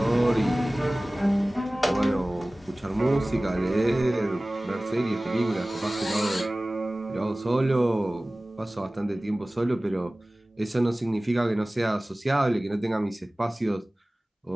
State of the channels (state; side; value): normal; both; correlation 0.98